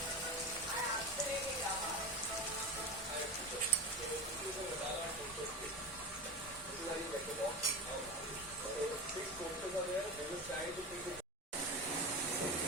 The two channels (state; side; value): normal; both; correlation 0.24